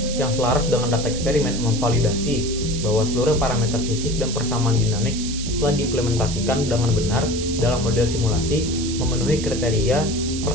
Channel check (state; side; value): noise; right; hiss, 8 dB below the sound